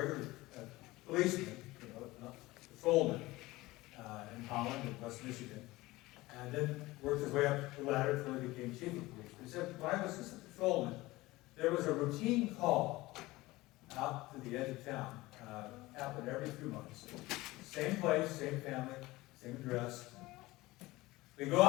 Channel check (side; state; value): right; quieter; 19.6 dB